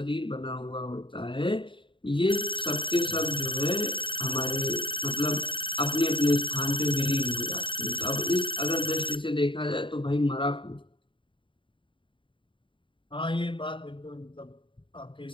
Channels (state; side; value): late; right; 0.24 ms